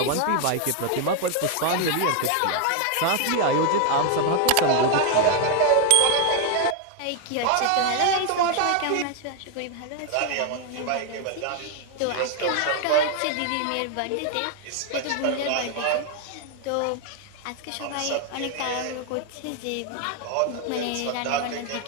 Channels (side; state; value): both; different; correlation 0.01